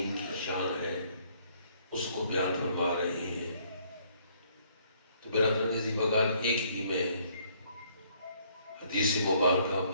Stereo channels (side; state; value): both; inverted; correlation -0.65